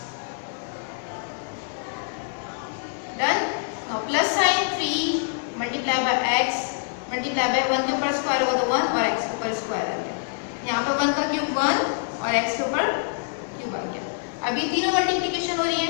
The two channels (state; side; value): silent; right; 61 dB below the other